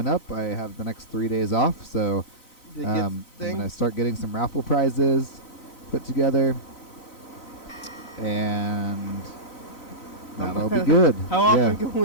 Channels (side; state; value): right; late; 3.0 ms